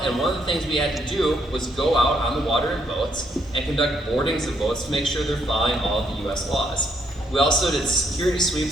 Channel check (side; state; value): both; normal; correlation 0.73